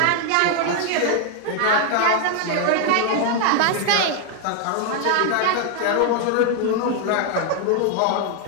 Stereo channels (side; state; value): both; different; correlation 0.00